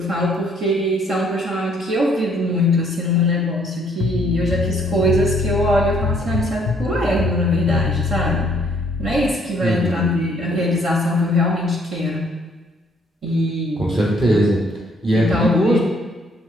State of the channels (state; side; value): normal; both; correlation 0.65